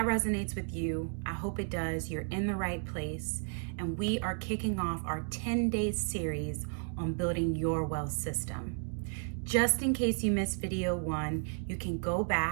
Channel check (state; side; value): silent; left; 56 dB below the other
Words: resonates with you, I hope it does. You're in the right place. And we are kicking off our 10-day series on building your wealth system. Just in case you missed video 1, you can go